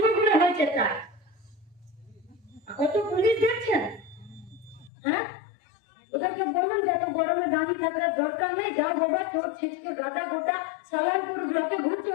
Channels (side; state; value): right; drops out; at 4.9 s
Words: করে হয়েছে তাই। কত পুলিশ দেখছেন, হ্যাঁ? ওদেরকে বললাম যে এত গরমে দাঁড়িয়ে থাকার দরকার নেই, যাও বাবা তোর ছিটকে গাদা গোটা সালানপুর ব্লকে ঘুরছে,